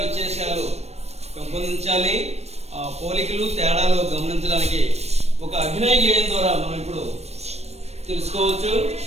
వ్యత్యాసాలు పెంపొందించాలి. ఆ పోలికలు తేడాలు గమనించడానికి ఒక అభినయ గేయం ద్వారా మనం ఇప్పుడు తెలుసుకోవచ్చు.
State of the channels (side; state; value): left; late; 0.31 ms